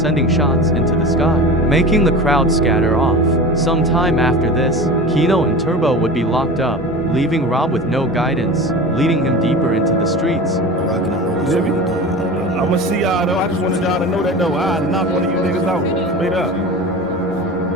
shots into the sky, making the crowd scatter off. Sometime after this, Keno and Turbo would be locked up, leaving Rob with no guidance, leading him deeper into the streets. I'ma see y'all though. I just wanted y'all to know that though. I'll knock one of you niggas out. Straight up.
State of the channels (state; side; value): normal; both; correlation 0.32